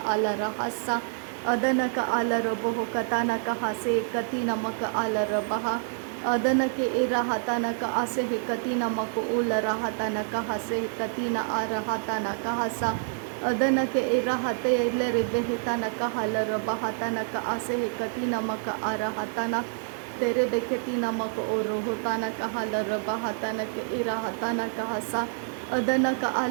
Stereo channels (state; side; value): silent; left; digital silence